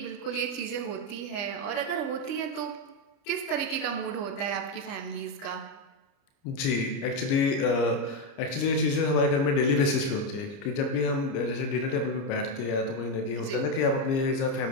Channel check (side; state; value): right; late; 30 ms